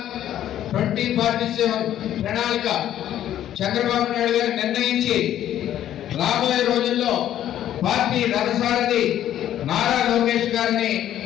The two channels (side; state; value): right; quieter; 11.6 dB